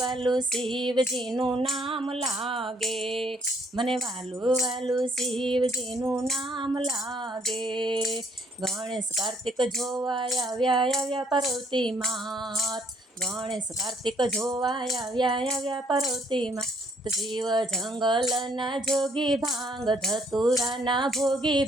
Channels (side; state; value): both; normal; correlation 0.66